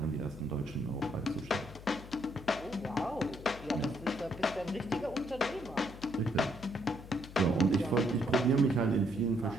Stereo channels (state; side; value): noise; left; hum, 15 dB below the sound